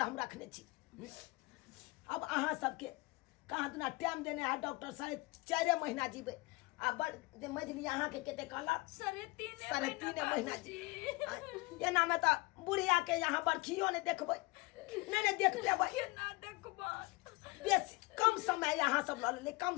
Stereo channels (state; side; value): quieter; right; 23.9 dB